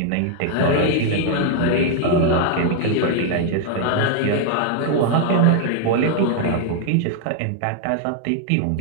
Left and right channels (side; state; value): both; different; correlation 0.00